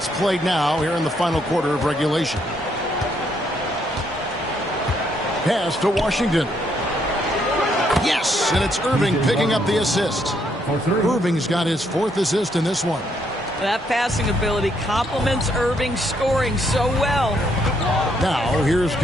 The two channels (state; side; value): normal; both; correlation 0.73